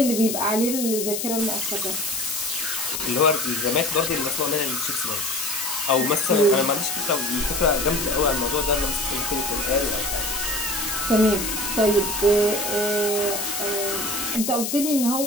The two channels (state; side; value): noise; left; hiss, 3 dB below the sound